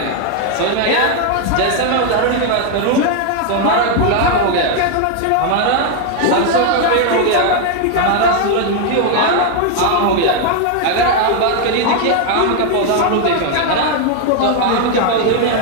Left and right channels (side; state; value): both; different; correlation 0.00